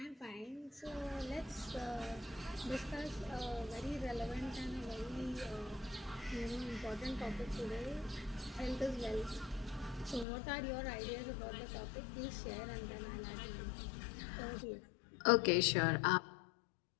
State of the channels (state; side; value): drops out; right; at 10.2 s